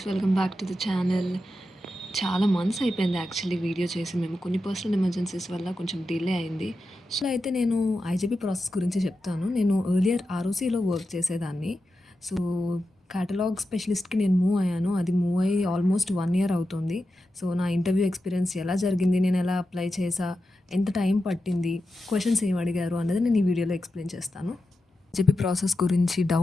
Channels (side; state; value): both; normal; correlation 0.90